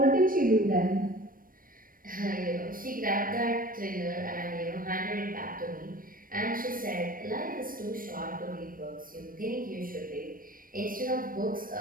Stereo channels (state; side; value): late; left; 0.41 ms